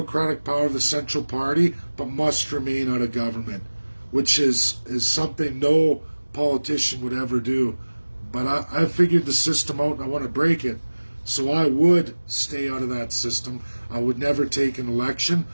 power of the central party, but must remain out of government, which is something no politician would ever do. But I figured the system out and I want to break it. So I would stay out of that system. I would never take an election.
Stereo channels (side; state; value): both; inverted; correlation -1.00